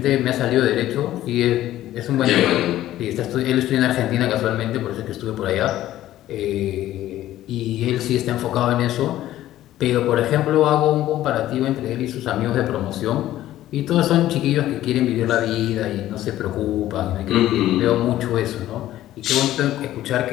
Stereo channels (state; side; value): quieter; right; 13.9 dB